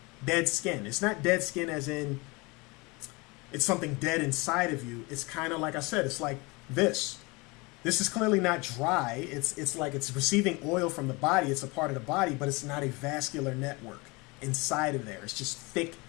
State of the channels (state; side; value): quieter; right; 25.9 dB